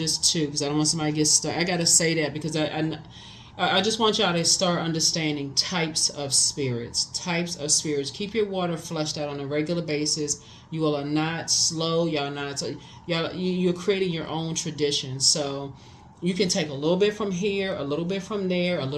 two, because I don't want somebody to get stuck. I gotta say that because I just want y'all to start understanding types of spirits. Types of spirits. Keep your water flushed out on a regular basis. You all are not slow. Y'all not. You're creating your own tradition. So you can take a little bit from here, a little bit from there, a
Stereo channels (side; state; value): both; identical; correlation 1.00